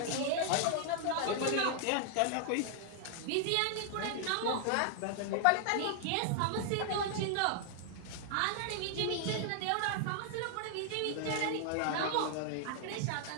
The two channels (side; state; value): both; different; correlation 0.00